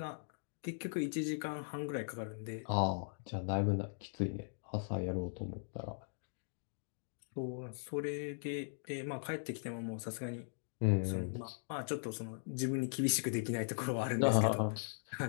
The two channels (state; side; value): silent; right; digital silence